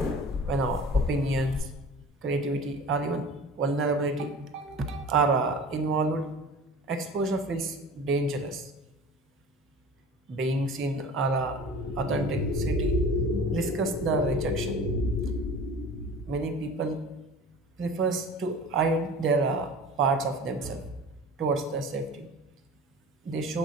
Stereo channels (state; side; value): normal; both; correlation 0.39